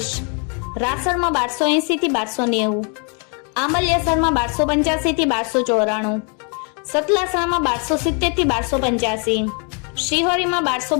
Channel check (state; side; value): quieter; right; 37.6 dB